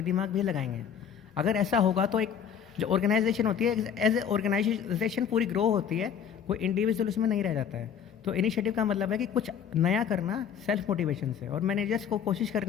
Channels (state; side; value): quieter; right; 7.9 dB